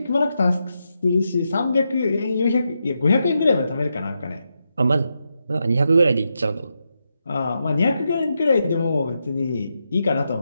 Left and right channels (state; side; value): inverted; both; correlation -0.85